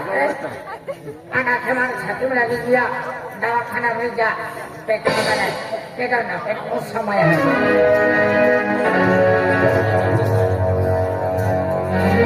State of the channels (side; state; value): both; identical; correlation 1.00